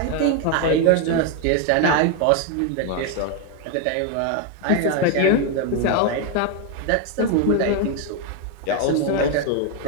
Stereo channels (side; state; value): both; different; correlation 0.01